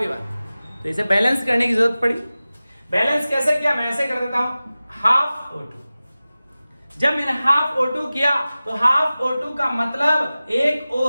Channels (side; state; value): both; inverted; correlation -0.96